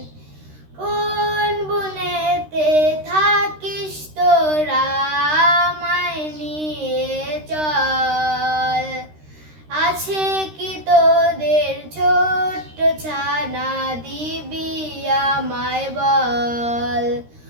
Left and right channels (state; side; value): late; left; 13 ms